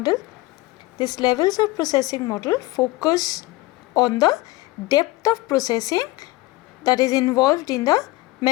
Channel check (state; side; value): quieter; right; 20.0 dB